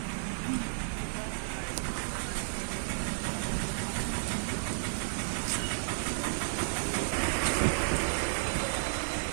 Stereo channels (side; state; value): left; silent; digital silence